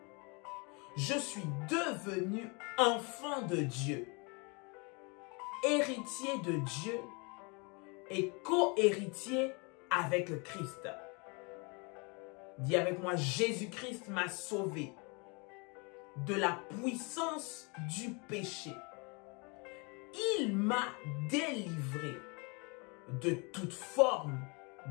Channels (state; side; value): quieter; right; 30.8 dB